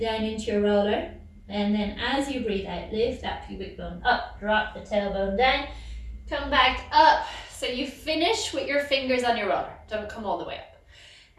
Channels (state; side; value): identical; both; correlation 1.00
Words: down into your roller. And then as you breathe out, lift that pubic bone up, drop the tailbone down, come back up. So you finish with your fingers on your roller. Don't come all the way